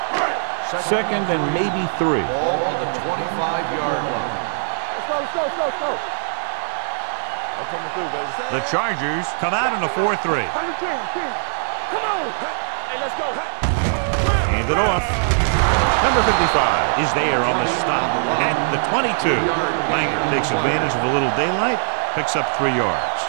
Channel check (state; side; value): silent; left; 65 dB below the other